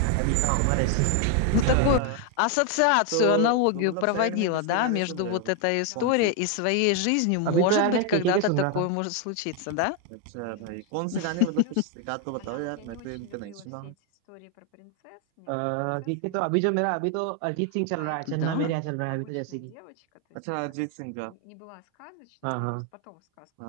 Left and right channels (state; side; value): different; both; correlation 0.01